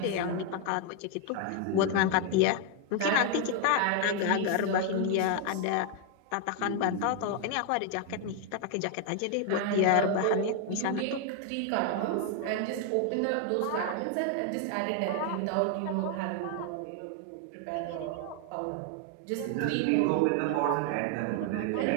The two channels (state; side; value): different; both; correlation 0.01